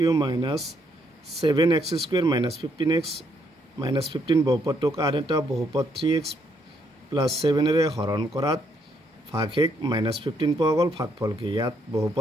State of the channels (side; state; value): both; normal; correlation 0.73